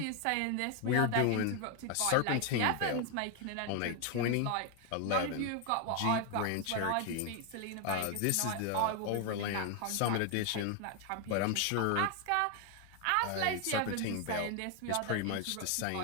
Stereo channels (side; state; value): both; different; correlation 0.01